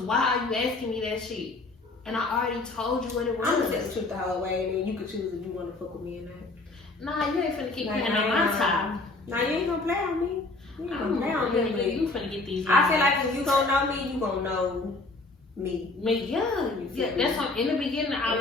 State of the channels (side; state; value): right; quieter; 3.3 dB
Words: are you asking me that shit? And I already told you what it was. I'm gonna tell the truth the whole way and then you can choose if you wanna fuck with me or not. Nah, you ain't finna keep playing on my time. Nah, you ain't gonna play on me. You finna get these. I feel like if you gonna know me, you gonna know me. Yeah. That's why in the beginning I